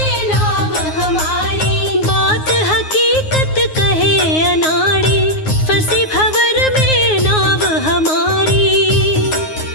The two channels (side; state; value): right; late; 9.5 ms